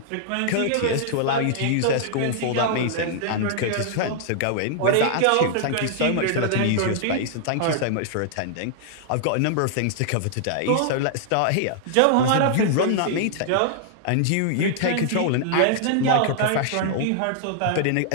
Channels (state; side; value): different; both; correlation -0.01